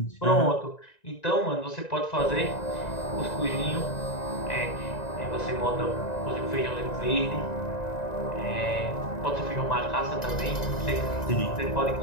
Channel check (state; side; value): late; right; 1.9 ms